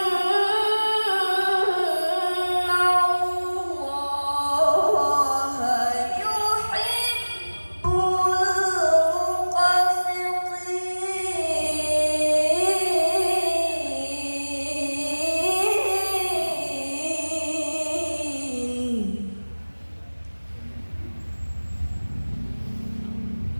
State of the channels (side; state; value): both; inverted; correlation -1.00